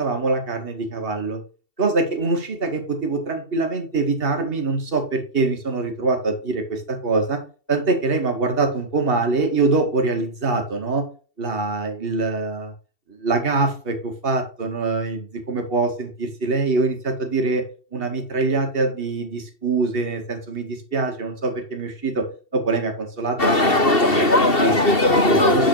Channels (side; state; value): right; late; 2.7 ms